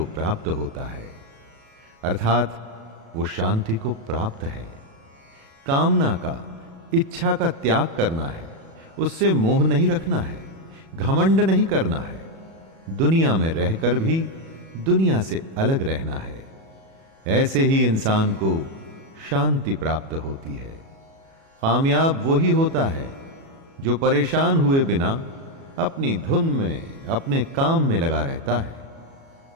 प्राप्त होता है। अर्थात वो शांति को प्राप्त है। कामना का, इच्छा का त्याग करना है, उससे मोह नहीं रखना है, घमंड नहीं करना है, दुनिया में रहकर भी दुनिया से अलग रहना है। ऐसे ही इंसान को शांति प्राप्त होती है। कामयाब वही होता है जो परेशान हुए बिना अपनी धुन में, अपने काम में लगा रहता है।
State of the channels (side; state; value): left; late; 36 ms